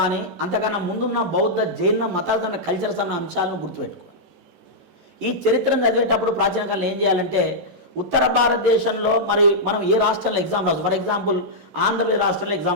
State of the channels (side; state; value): left; late; 14 ms